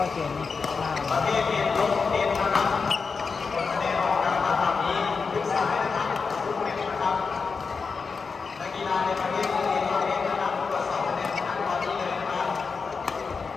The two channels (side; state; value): right; quieter; 5.0 dB